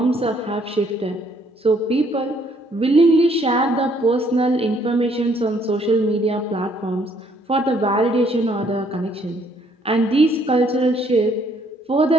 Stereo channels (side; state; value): both; normal; correlation 0.66